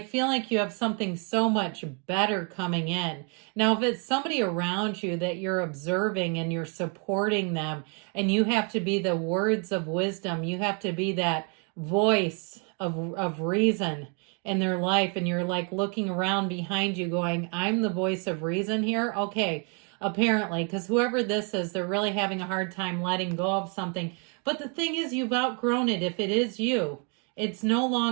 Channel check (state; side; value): quieter; left; 37.4 dB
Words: like you have something so much better coming in. Now, if it's somebody around you that you're observing and you're supporting them, and you have to be the words of wisdom, you have to be that voice of reason in their life, and you're like looking around behind you going, I'm the voice of reason here. Okay, apparently, because whoever this is, they're really having a hard time letting go of something. But the thing is, you've outgrown it. If it is you, it's no